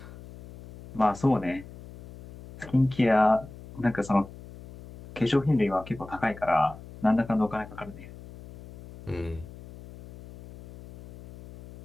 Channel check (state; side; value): noise; left; hum, 17 dB below the sound